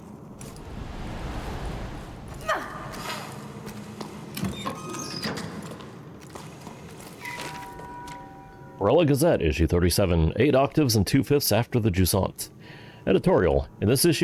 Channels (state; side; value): identical; both; correlation 1.00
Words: Barella Gazette, issue 37, 8 octaves and 2/5 after the Jusant. Editorial. In this